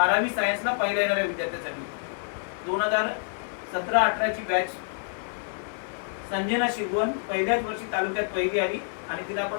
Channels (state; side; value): silent; right; digital silence